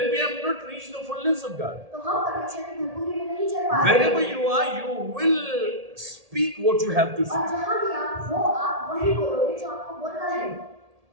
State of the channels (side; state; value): left; late; 1.7 ms